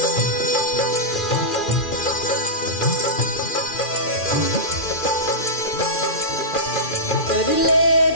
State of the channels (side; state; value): right; late; 2.4 ms